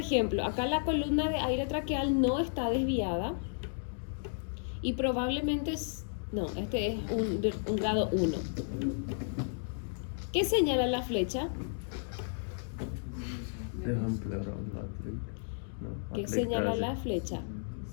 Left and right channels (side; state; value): right; silent; digital silence